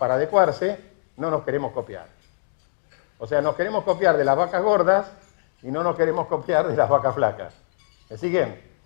adecuarse, no nos queremos copiar. O sea, nos queremos copiar de las vacas gordas y no nos queremos copiar de las vacas flacas. ¿Me siguen?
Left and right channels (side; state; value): right; silent; digital silence